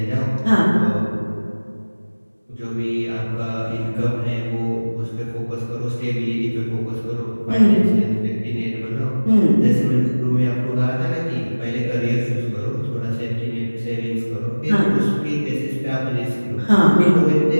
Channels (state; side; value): inverted; both; correlation -1.00